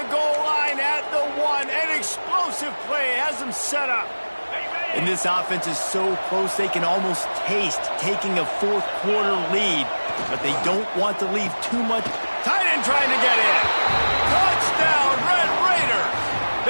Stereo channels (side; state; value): both; inverted; correlation -1.00